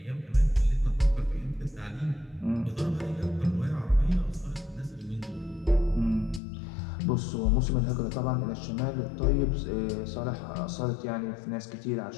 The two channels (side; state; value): right; drops out; at 6.4 s